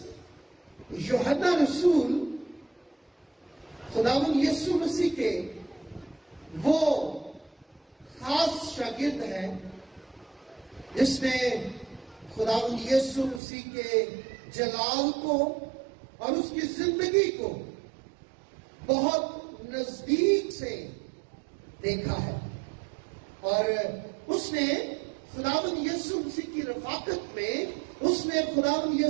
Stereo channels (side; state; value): left; drops out; at 13.4 s